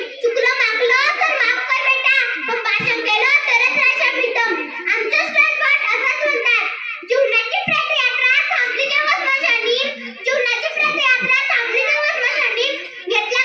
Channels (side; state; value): both; identical; correlation 1.00